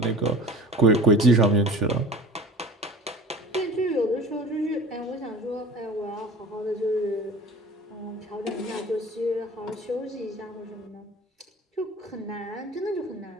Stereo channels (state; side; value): normal; both; correlation 0.42